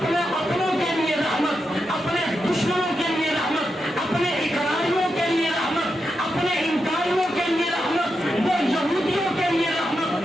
अपनों के लिए रहमत, अपने दुश्मनों के लिए रहमत, अपने इकरारियों के लिए रहमत, अपने इनकारियों के लिए रहमत, वो यहूदियों के लिए रहमत,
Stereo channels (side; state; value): both; normal; correlation 0.86